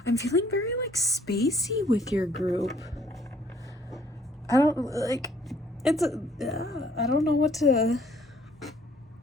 I'm feeling very like spacey with your group. I don't like, it's a, I don't know what to,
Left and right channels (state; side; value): normal; both; correlation 0.62